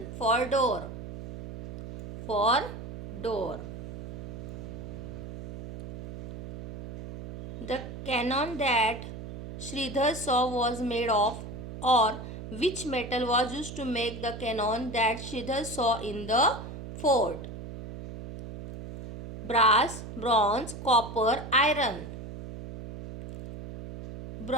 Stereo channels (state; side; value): noise; right; hum, 10 dB below the sound